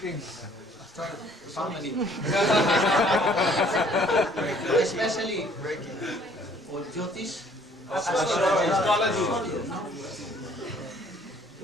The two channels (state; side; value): normal; both; correlation 0.59